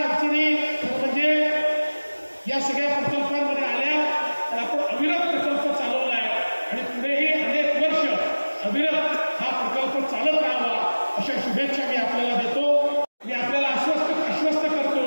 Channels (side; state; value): both; inverted; correlation -1.00